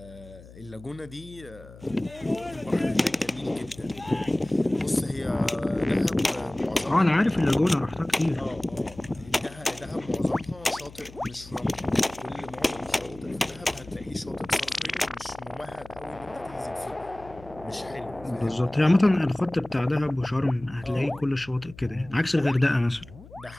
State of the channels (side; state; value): left; noise; hum, 19 dB below the sound